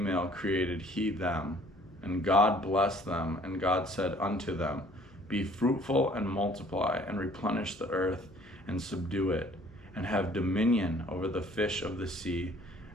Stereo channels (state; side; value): noise; left; hum, 27 dB below the sound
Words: created he them. And God blessed them, and God said unto them, be fruitful and multiply, and replenish the earth, and subdue it, and have dominion over the fish of the sea,